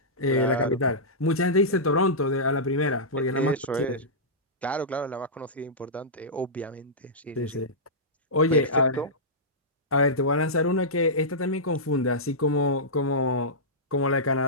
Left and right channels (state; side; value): normal; both; correlation -0.14